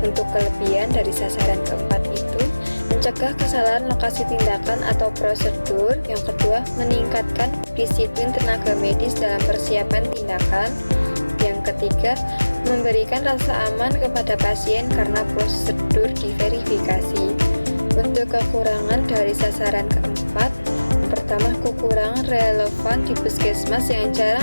kelebihan dari sasaran keempat itu, mencegah kesalahan lokasi tindakan atau prosedur. Yang kedua, meningkatkan disiplin tenaga medis dalam persiapan tindakan. Yang ketiga, memberikan rasa aman kepada pasien karena prosedur diverifikasi. Untuk kekurangan dari sasaran keempat, yang pertama, kekurangan relevan di puskesmas yang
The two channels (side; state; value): both; inverted; correlation -1.00